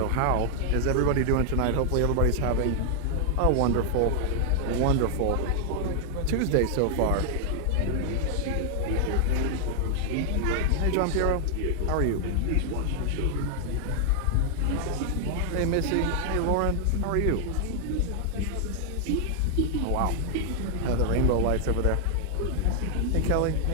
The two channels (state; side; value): different; both; correlation 0.00